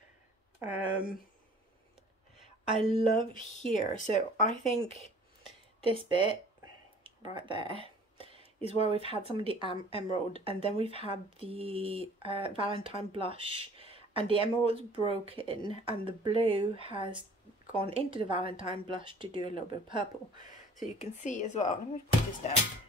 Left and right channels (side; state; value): both; normal; correlation 0.50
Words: I love here. So I think this bit right there is where we've had some of the emerald, and then we've had the Valentine blush, and the emerald's broken and the blue has gone into the Valentine blush to do a little bit of purple. So you can see as well, let me put this down.